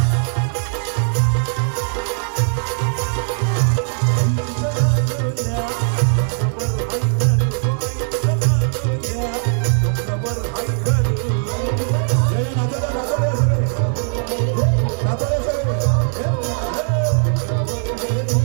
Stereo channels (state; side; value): silent; left; 64 dB below the other